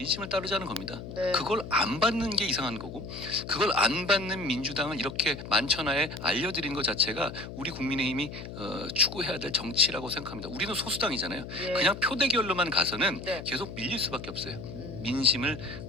따르자는 겁니다. 네. 그걸 안 받는 게 이상한 거고, 그걸 안 받는 민주당을 이렇게 만천하에 알려드린 것 자체가 우리 국민의힘이 추구해야 될 정치라고 생각합니다. 우리는 소수당이잖아요. 예. 그냥 표 대결로만 가서는 네. 계속 밀릴 수밖에 없어요. 음. 민심을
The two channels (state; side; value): noise; left; hum, 10 dB below the sound